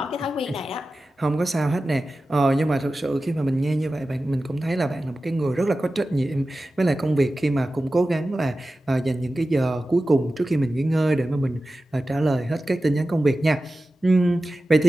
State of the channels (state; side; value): normal; both; correlation 0.94